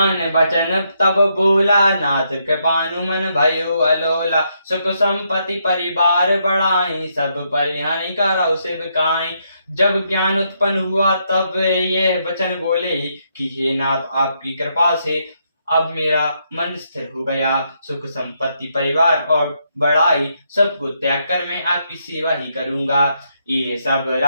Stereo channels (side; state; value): both; inverted; correlation -0.77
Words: बचन तब बोला, नाथ कृपानु मन भयो अलोला। सुख संपत्ति परिवार बढ़ाई, सब परिहानि करौ सेवकाई। जब ज्ञान उत्पन्न हुआ तब ये वचन बोले कि हे नाथ, आपकी कृपा से अब मेरा मन स्थिर हो गया। सुख संपत्ति परिवार और बड़ाई सबको त्याग कर मैं आपकी सेवा ही करूंगा। ये सब